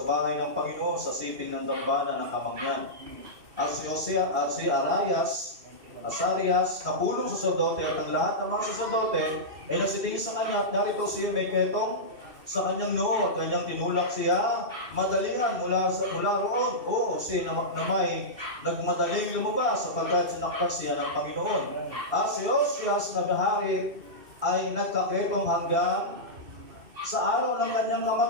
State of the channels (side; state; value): left; late; 2.6 ms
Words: bahay ng Panginoon sa siping ng dambana ng Kamangyan. At si Asarias, na pulong saserdote at ang lahat ng mga saserdote ay nagsitingin sa kanya at narito siya may ketong sa kanyang noo at kanyang tinulak siya madalingan mula roon. Oo, siya na may nagmadaling lumabas sapagkat sinaktan siya ng Panginoon. At si Osias na bahari ay nagkaketong hanggang sa araw ng kanyang